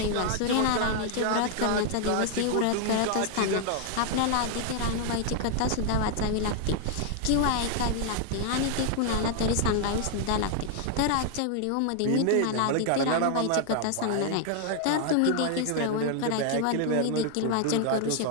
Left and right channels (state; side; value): different; both; correlation 0.00